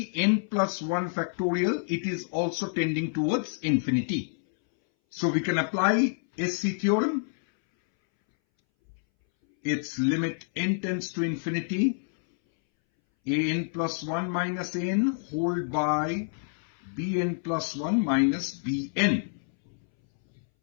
n plus 1 factorial, it is also tending towards infinity. So we can apply SC theorem. Its limit n tends to infinity, an plus 1 minus n whole by bn plus 1 minus bn.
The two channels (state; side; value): silent; right; 60 dB below the other